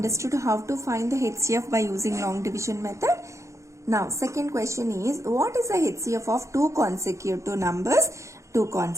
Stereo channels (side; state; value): left; late; 0.15 ms